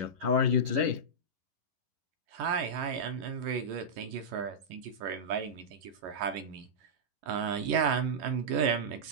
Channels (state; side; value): late; left; 11 ms